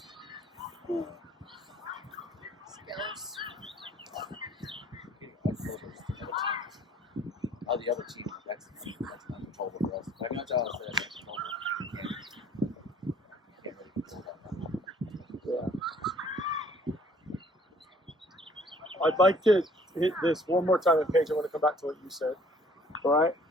Skills. The other team, that's uncontrollable for us. I know John said that's controllable. You can't really control that. Yeah. I'd like to hit this one more time, and Paige, I want to come back to what you said. All right?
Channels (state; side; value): normal; both; correlation 0.57